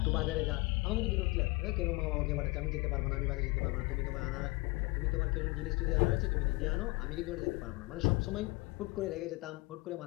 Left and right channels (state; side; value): quieter; right; 23.8 dB